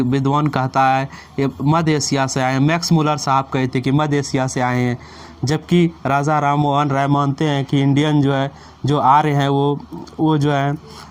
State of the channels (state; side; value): identical; both; correlation 1.00